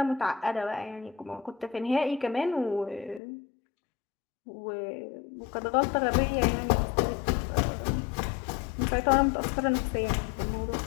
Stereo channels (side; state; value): right; drops out; at 3.2 s